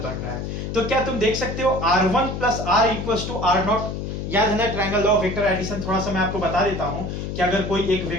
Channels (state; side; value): noise; left; hum, 5 dB below the sound